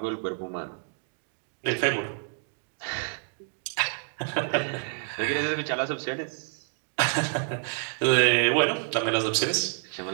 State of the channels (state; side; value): silent; left; 59 dB below the other